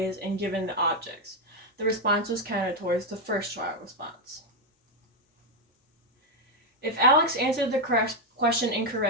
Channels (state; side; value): normal; both; correlation 0.03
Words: and given the objects. The response was counted towards the first trial response. If Alex answered the question